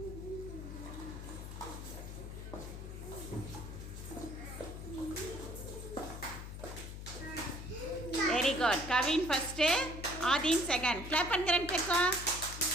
Very good. Kavin first, Adheen second. Clap பண்ணுங்க ரெண்டு பேருக்கும்.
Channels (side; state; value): left; noise; hum, 9 dB below the sound